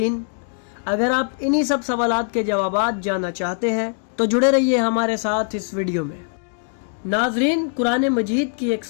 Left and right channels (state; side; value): silent; right; 61 dB below the other